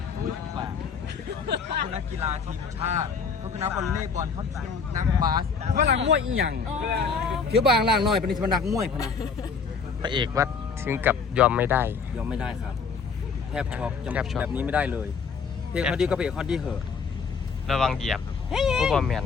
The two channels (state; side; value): quieter; right; 5.5 dB